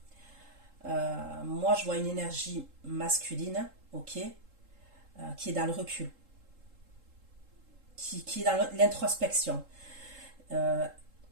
Moi, je vois une énergie masculine, ok, qui est dans le recul, qui est dans l'introspection. Mais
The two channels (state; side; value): late; left; 3.7 ms